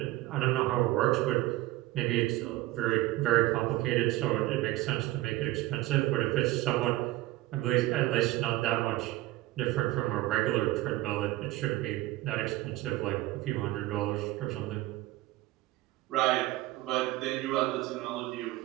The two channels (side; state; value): left; quieter; 17.3 dB